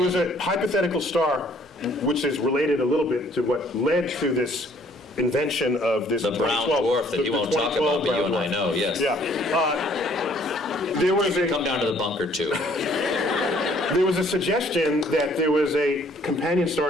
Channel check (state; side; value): normal; both; correlation 0.61